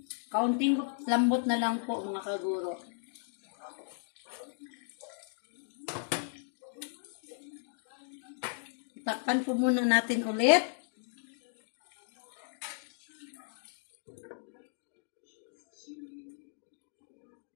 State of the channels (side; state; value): right; silent; digital silence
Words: Kaunting lambot na lang po mga kaguro. Takpan po muna natin ulit.